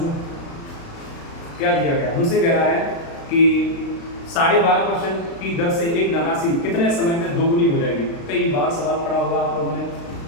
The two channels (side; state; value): right; late; 36 ms